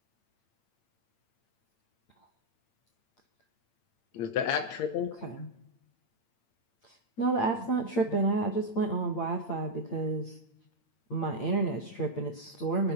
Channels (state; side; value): late; right; 8.8 ms